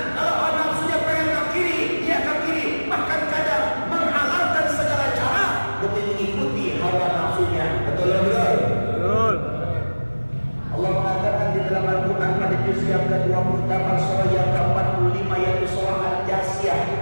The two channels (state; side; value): inverted; both; correlation -1.00